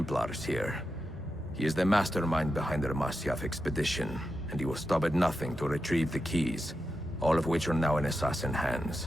here. He is the mastermind behind their Masyaf expedition, and he will stop at nothing to retrieve the keys, all of which are now in assassin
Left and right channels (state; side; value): normal; both; correlation 0.88